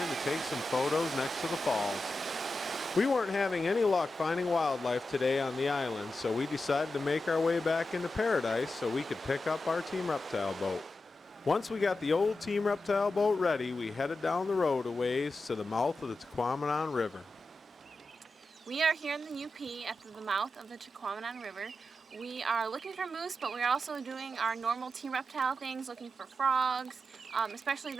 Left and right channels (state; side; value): normal; both; correlation 0.90